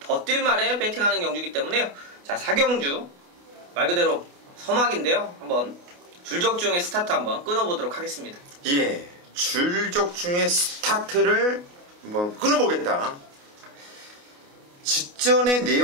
뛸 말에 배팅하는 경주이기 때문에요. 자, 4경주 말 그대로 서막인데요. 한번 줄적중의 스타트 한번 끊어보도록 하겠습니다. 예, 줄적중의 스타트를 한번 끊어보겠다. 직전의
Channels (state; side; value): late; left; 28 ms